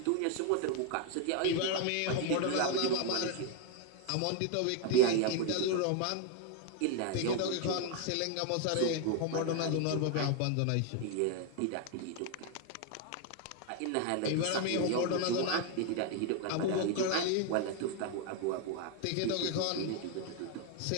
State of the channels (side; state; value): both; different; correlation 0.01